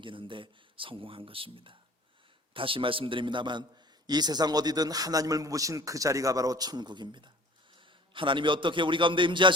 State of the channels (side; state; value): both; normal; correlation 0.46